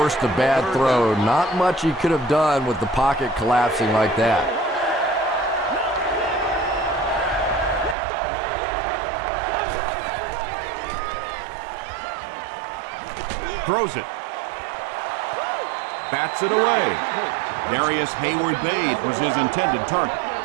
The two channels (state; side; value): drops out; left; at 8.0 s